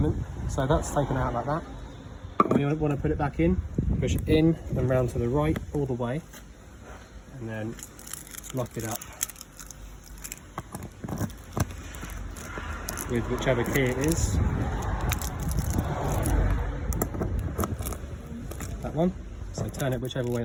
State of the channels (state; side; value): identical; both; correlation 1.00